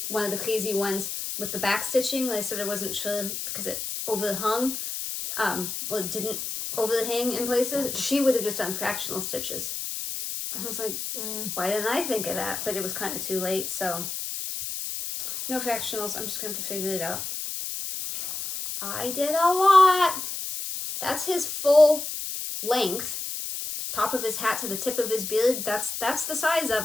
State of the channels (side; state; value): left; noise; hiss, 5 dB below the sound